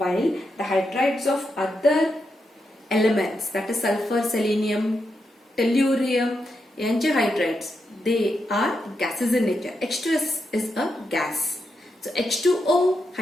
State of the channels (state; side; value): normal; both; correlation 0.84